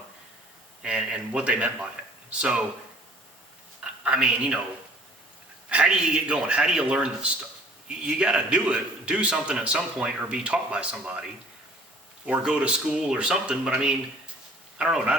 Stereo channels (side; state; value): both; normal; correlation 0.53